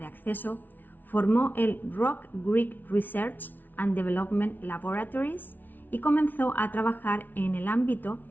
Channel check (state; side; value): late; right; 0.086 ms